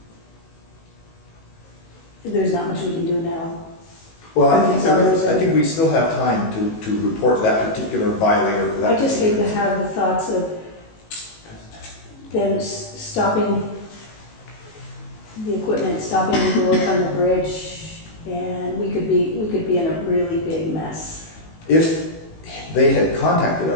There's not much we can do now. Well, I think we still have time to report that particular violator for that. I just hate to particular have the thoughts of them stopping the equipment, stopping the work on the bridge, and we could be in a really big mess. If they had contacted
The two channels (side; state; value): right; late; 19 ms